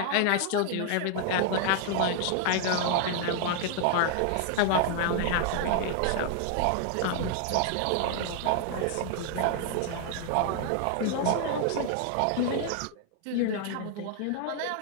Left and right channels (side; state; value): both; different; correlation 0.00